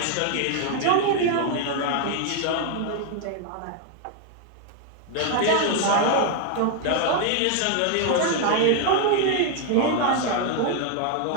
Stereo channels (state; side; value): different; both; correlation 0.00